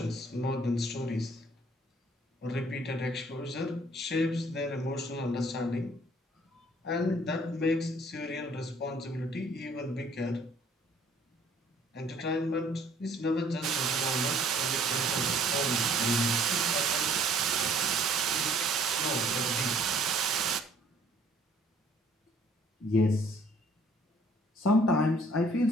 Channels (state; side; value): normal; both; correlation 0.58